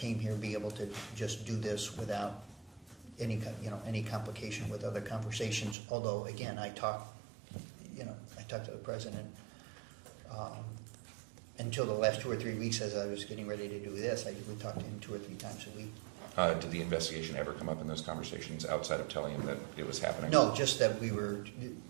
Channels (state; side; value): drops out; left; at 5.8 s